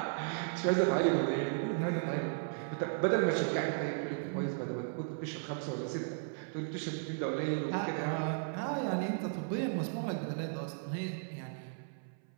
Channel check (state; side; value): silent; left; 54 dB below the other